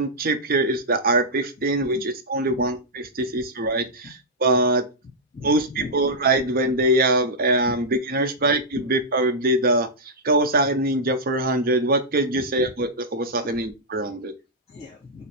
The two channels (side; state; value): both; normal; correlation -0.08